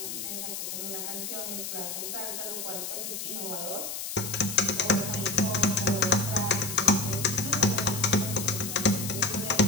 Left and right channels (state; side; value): noise; left; hiss, 5 dB below the sound